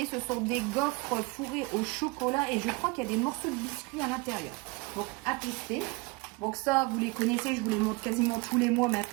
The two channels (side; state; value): left; quieter; 26.3 dB